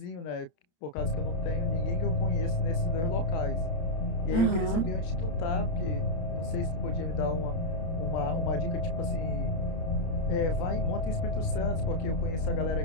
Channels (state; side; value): late; right; 31 ms